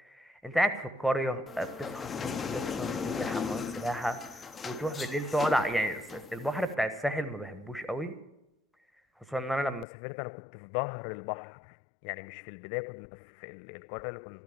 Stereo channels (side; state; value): right; drops out; at 9.9 s